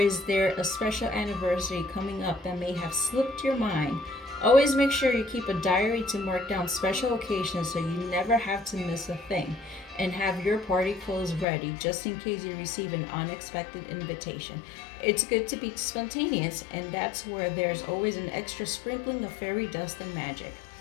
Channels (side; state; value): right; drops out; at 11.5 s